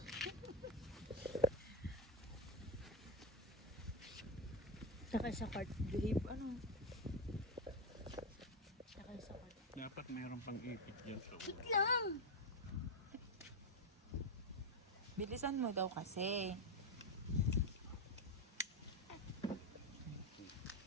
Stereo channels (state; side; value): normal; both; correlation 0.10